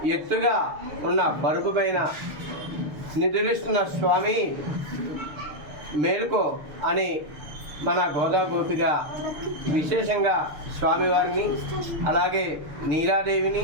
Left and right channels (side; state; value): left; late; 6.7 ms